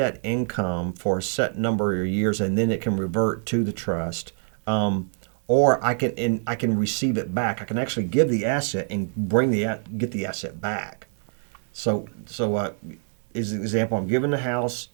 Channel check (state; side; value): silent; left; 62 dB below the other